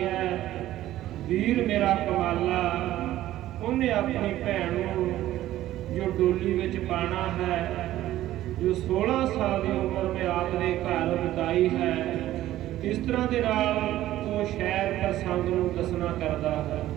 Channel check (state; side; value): quieter; left; 14.2 dB